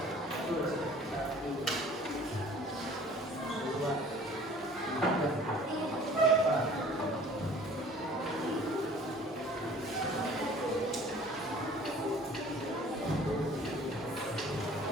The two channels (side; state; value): both; normal; correlation 0.50